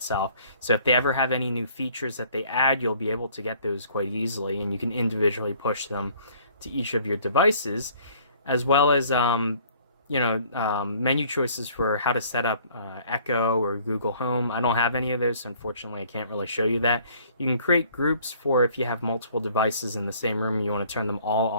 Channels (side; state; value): both; inverted; correlation -0.56